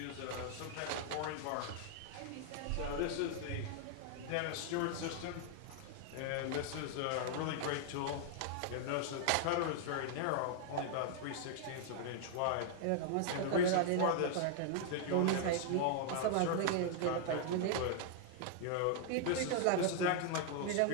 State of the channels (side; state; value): both; different; correlation 0.00